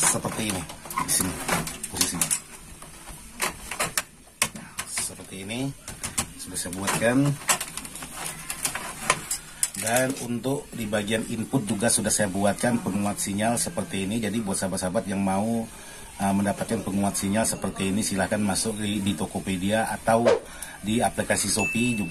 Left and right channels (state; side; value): identical; both; correlation 1.00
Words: ini, di sini posisinya. Seperti ini sudah saya buatkan. Dan untuk di bagian input juga sudah saya buatkan penguat sinyal seperti ini. Jadi buat sahabat-sahabat yang mau mendapatkan penguat sinyal seperti ini, silahkan masuk di Tokopedia atau di aplikasi Shopee